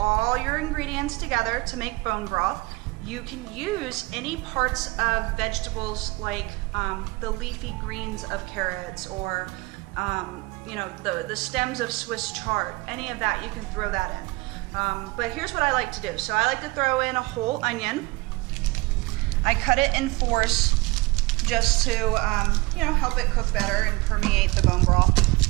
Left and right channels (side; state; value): left; quieter; 23.7 dB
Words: your ingredients together to make bone broth. You can use any parts of vegetables like the leafy greens of carrots, or the stems of Swiss chard. Any of that, you can throw that in. But here's what I like to do. So I like to throw in a whole onion. I cut it in fours just to help it cook better and permeate the bone broth.